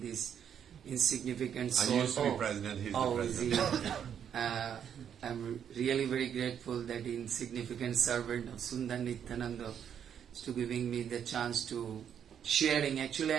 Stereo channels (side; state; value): left; quieter; 8.6 dB